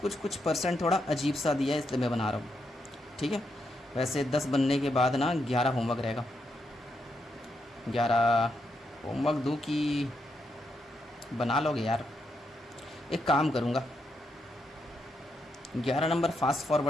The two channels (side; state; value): both; normal; correlation 0.81